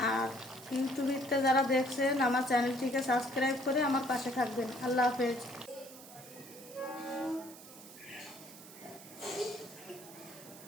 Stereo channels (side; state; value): right; noise; hiss, 17 dB below the sound